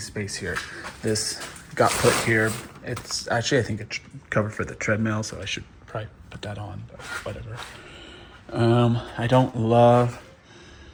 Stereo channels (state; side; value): identical; both; correlation 1.00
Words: here. This got put here. It's actually, I think it's covered for the treadmill, so I should probably put that on, but whatever. I don't love